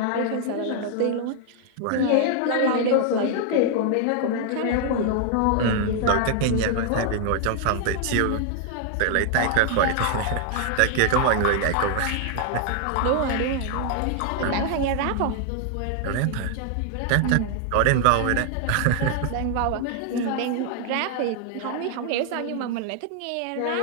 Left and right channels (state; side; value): different; both; correlation 0.00